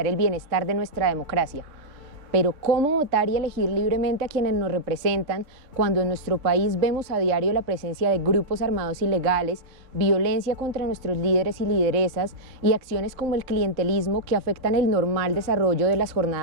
el bienestar de nuestra democracia. Pero ¿cómo votar y elegir libremente a quienes nos representan cuando en nuestro país vemos a diario la presencia de grupos armados ilegales, violencia contra nuestros líderes y lideresas y acciones como el clientelismo que afectan el normal desarrollo de las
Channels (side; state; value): left; late; 3.5 ms